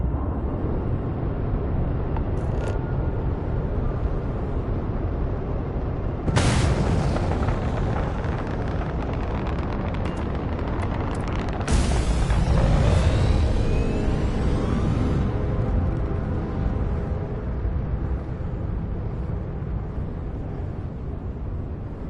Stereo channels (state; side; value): identical; both; correlation 1.00